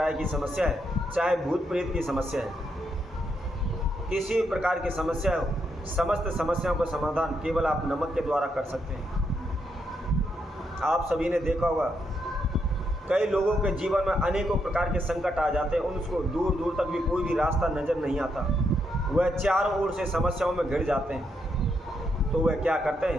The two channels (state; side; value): normal; both; correlation 0.79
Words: की समस्या है, चाहे भूत प्रेत की समस्या है, किसी भी प्रकार की समस्या हो, समस्त समस्याओं का समाधान केवल आप नमक के द्वारा कर सकते हैं। आप सभी ने देखा होगा, कई लोगों के जीवन में अनेकों प्रकार के संकट आ जाते हैं, उनको दूर दूर तक भी कोई भी रास्ता नज़र नहीं आता, वह चारों ओर से समस्याओं में घिर जाते हैं। तो वह क्या करते